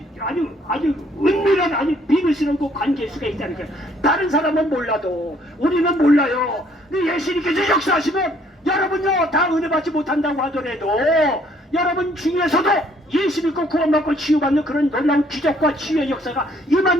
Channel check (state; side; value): normal; both; correlation 0.63